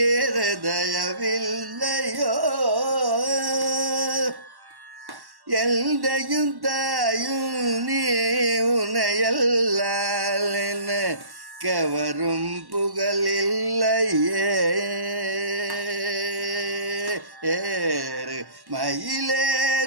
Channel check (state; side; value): late; left; 1.1 ms